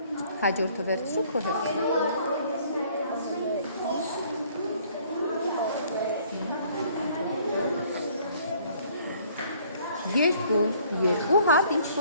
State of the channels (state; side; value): inverted; both; correlation -0.59